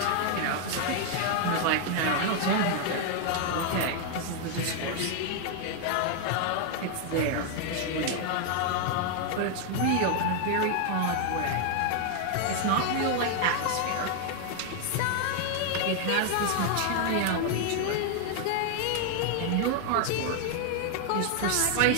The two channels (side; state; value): both; different; correlation 0.00